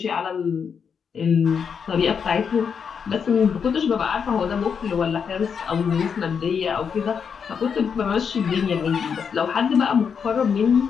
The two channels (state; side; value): quieter; right; 6.7 dB